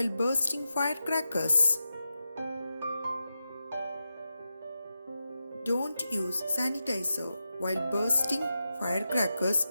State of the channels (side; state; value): both; inverted; correlation -0.90